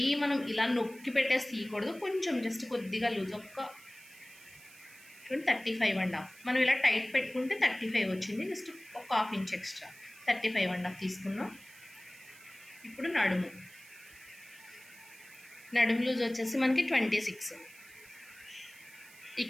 మనం ఇలా నొక్కి పెట్టేసి తీయకూడదు, కొంచెం జస్ట్ కొద్దిగా లూజ్, ఒక్క 35.5. మనం ఇలా టైట్ పెట్టుకుంటే 35 వచ్చింది, జస్ట్ ఒక 1/2 ఇంచ్ ఎక్స్ట్రా 35.5 తీసుకున్నాం. ఇప్పుడు నడుము లూజ్ వచ్చేసి మనకి 26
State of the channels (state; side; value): noise; right; hiss, 21 dB below the sound